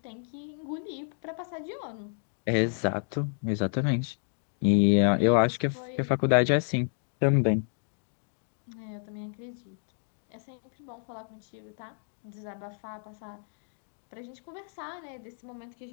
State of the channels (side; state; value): right; silent; 57 dB below the other